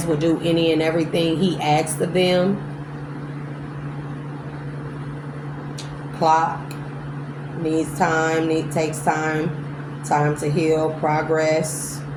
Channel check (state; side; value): identical; both; correlation 1.00